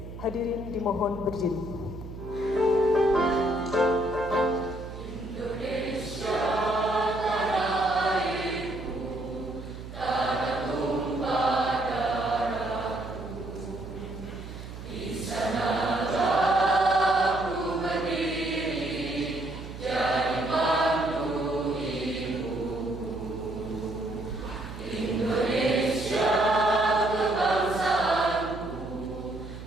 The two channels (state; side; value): noise; right; hum, 11 dB below the sound